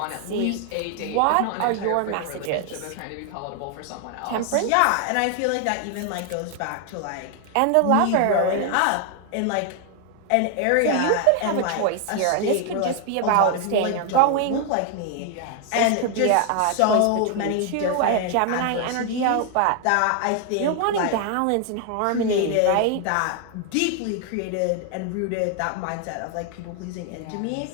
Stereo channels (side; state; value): both; different; correlation 0.00